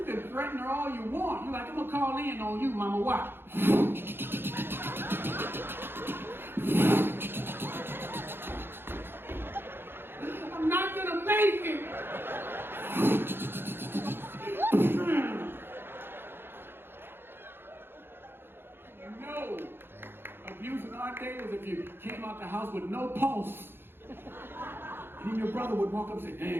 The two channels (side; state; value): left; late; 0.10 ms